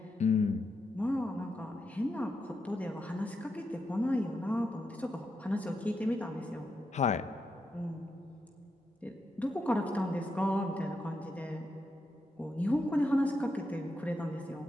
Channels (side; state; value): both; normal; correlation 0.84